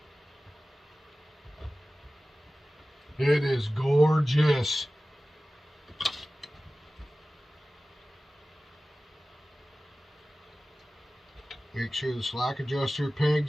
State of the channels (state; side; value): normal; both; correlation 0.96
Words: It is gorgeous. Make sure the slack adjuster